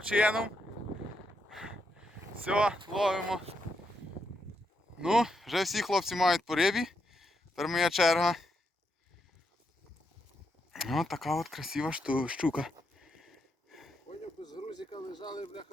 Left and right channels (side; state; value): both; normal; correlation 0.81